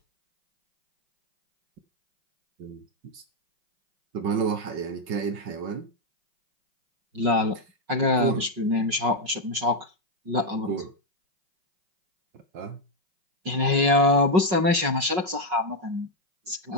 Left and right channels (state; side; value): late; left; 5.4 ms